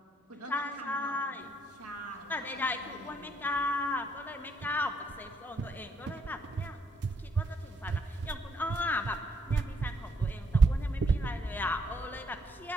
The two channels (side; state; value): both; normal; correlation 0.72